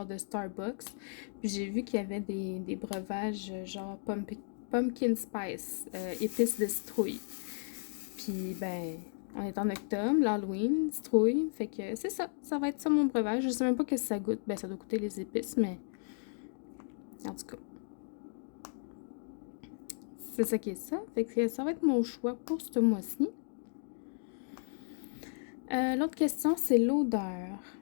de Starbucks. Puis j'ai vu qu'il y avait des breuvages genre pumpkin spice, épices de citrouille. Puis ben, on est en octobre, l'Halloween, citrouille. Fait que c'est ça, ça va être ça mon breuvage. Je sais même pas que ça goûte. Ben, ça doit goûter les épices, mais en tout cas, c'est ça qui est ça. Fait que ça va être mon choix pour ce mois-ci. L'autre question, c'est l'odeur.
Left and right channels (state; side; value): silent; right; digital silence